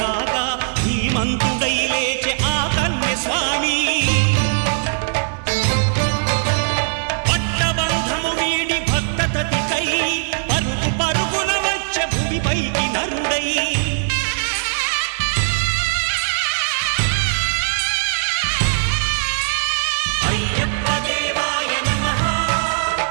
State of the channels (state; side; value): silent; left; digital silence